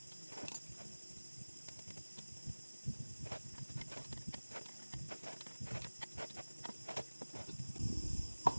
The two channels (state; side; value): inverted; both; correlation -1.00